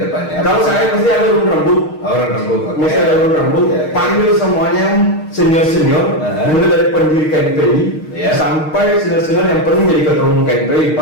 depannya? Kalau saya mesti ada urun rembuk, orang rembuk. mesti ada urun rembuk, Ya. panggil semuanya senior-senior, mulai dari pendiri KNPI Ya. sampai senior-senior yang pernah jadi ketua umum KNPI,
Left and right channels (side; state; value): right; late; 6.5 ms